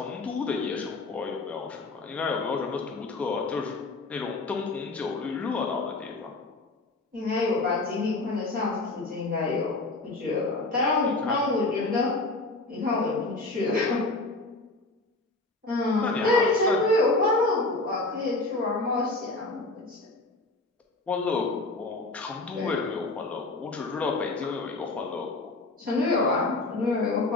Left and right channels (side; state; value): right; quieter; 3.1 dB